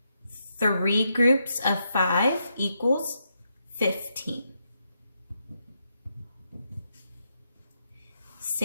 3 groups of 5 equals 15.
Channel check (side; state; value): both; inverted; correlation -0.81